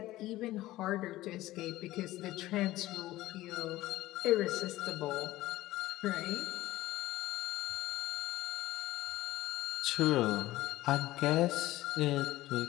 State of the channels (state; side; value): quieter; right; 16.5 dB